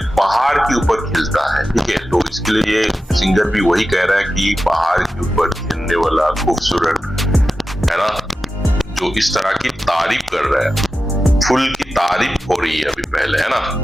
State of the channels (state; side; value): normal; both; correlation 0.93